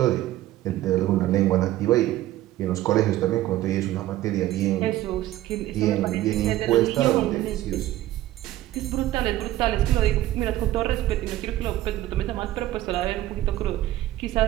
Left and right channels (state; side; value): quieter; left; 14.7 dB